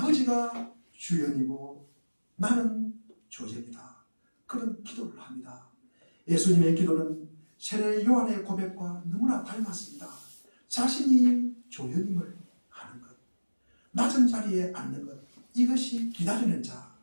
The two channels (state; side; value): inverted; both; correlation -1.00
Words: 주연이고 나는 조연이다. 그런 기도를 합니다. 예수님의 기도는 세례 요한의 고백과 너무나 닮았습니다. 자신이 조연임을 하는 것, 낮은 자리에 앉는 것, 이것이 기다리는 자,